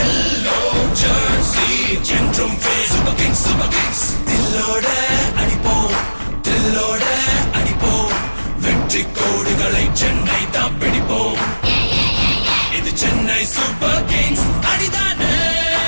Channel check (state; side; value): inverted; both; correlation -1.00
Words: jersey என்றும் சூப்பர் கிங்ஸ். தில்லோட அடிப்போம், தில்லோட அடிப்போம், வெற்றி கோடுகளை சென்னை தான் பிடிப்போம். இது சென்னை சூப்பர் கிங்ஸ் அடிதானே,